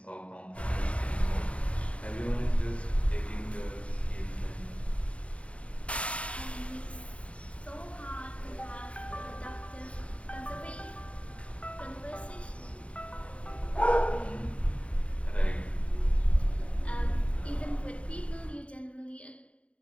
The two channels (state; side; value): late; right; 0.063 ms